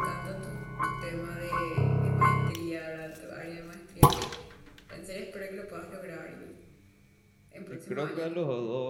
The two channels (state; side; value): identical; both; correlation 1.00